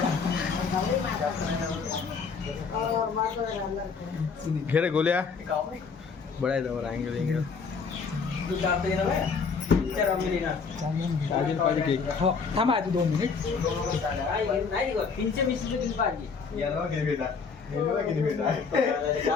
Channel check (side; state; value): right; quieter; 5.3 dB